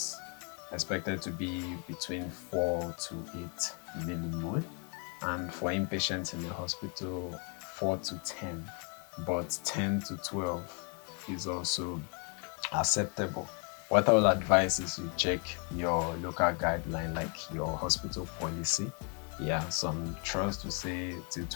expected to be between 4 to 8 millimole, and for inpatients in the hospital 4 to 10, but 10 to 12 is also acceptable. What I will advise is you check your local guideline, like your hospital policy. Yeah, some trust to say to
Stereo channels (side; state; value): right; quieter; 37.5 dB